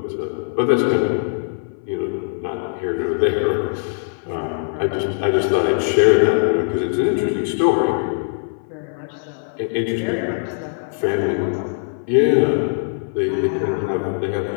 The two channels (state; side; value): silent; right; 59 dB below the other